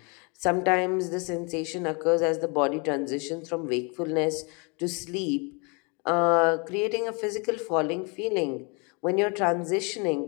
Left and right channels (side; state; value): right; quieter; 32.6 dB